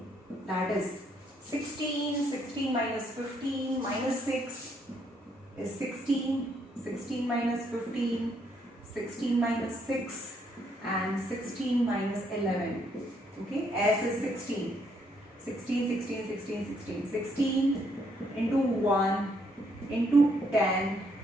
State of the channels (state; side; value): normal; both; correlation 0.72